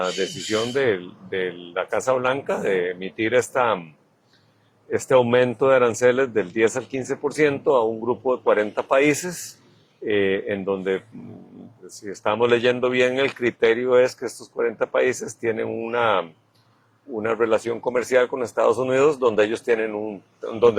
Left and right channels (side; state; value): both; identical; correlation 1.00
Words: decisión de la Casa Blanca de emitir este aumento de aranceles del 10 al 15% a un grupo de 40 países, en donde, si estamos leyendo bien, el criterio es que estos 40 países tienen una relación comercial con Estados Unidos donde ellos